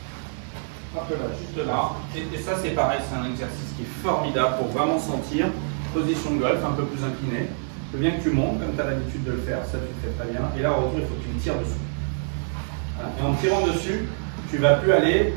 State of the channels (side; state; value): left; silent; digital silence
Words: Un peu là, juste là. Et ça, c'est pareil, c'est un exercice qui est formidable pour vraiment sentir position de golf un peu plus inclinée. Je veux bien que tu montes, comme tu as l'habitude de le faire, ça tu le fais très bien. Et là, au retour, il faut que tu me tires dessus. Voilà. Et en tirant dessus, tu ne vas plus aller.